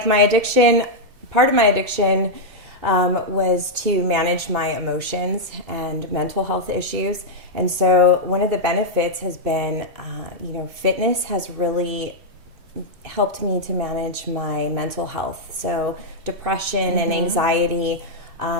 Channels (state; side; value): late; left; 2.7 ms